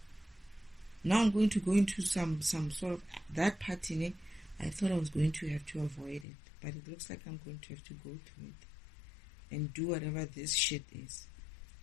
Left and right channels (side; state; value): right; drops out; at 6.2 s